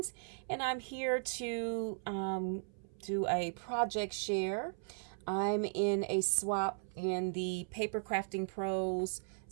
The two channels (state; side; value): silent; left; 53 dB below the other